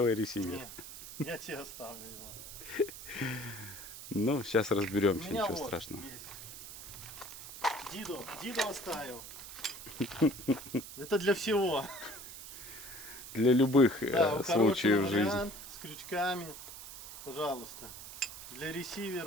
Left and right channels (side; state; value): right; noise; hiss, 12 dB below the sound